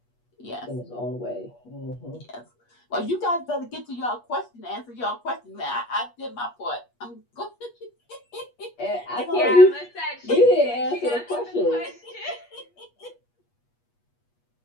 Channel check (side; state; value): right; late; 8.3 ms